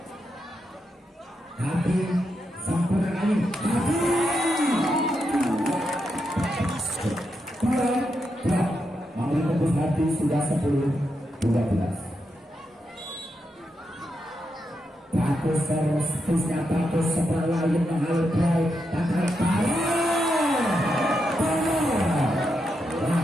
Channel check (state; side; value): normal; both; correlation 0.84